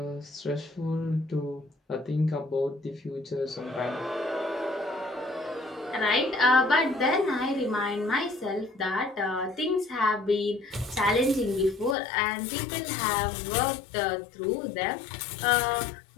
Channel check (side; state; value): right; drops out; at 12.0 s